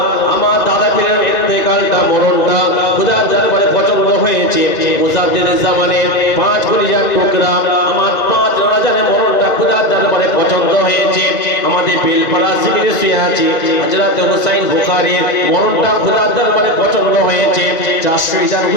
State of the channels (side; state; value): right; late; 1.9 ms